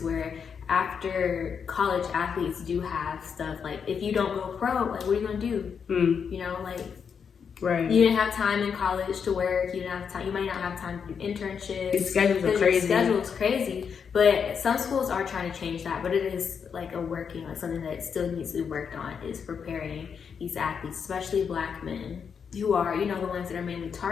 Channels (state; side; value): quieter; right; 6.7 dB